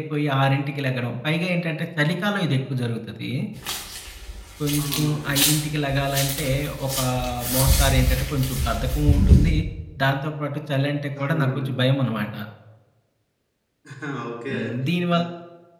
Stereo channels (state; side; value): identical; both; correlation 1.00